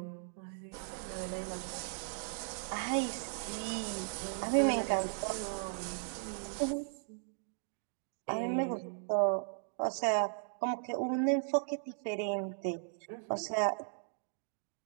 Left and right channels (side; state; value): left; silent; digital silence